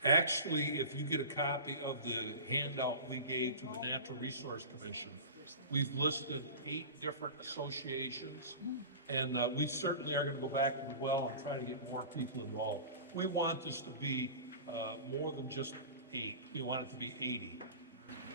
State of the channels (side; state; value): both; inverted; correlation -0.34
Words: Actually, if you get a copy of the handout we gave to the Natural Resource Commission, we've listed 8 different associations, and we certainly are going to go back as well and try to get more people involved. We want this to be more than just 8. We want it to be 80.